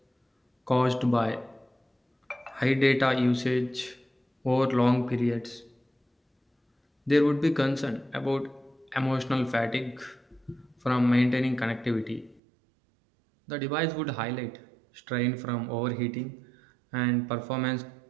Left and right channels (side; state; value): left; drops out; at 12.4 s